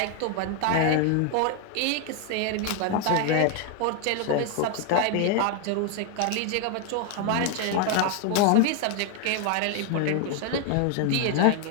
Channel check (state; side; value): different; both; correlation 0.01